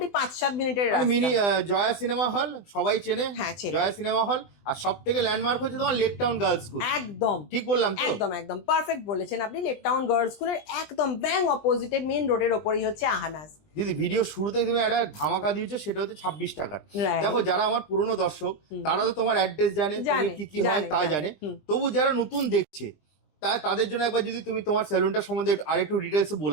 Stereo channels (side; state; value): right; late; 20 ms